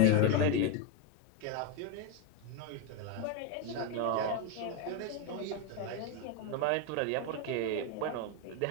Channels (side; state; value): both; different; correlation 0.03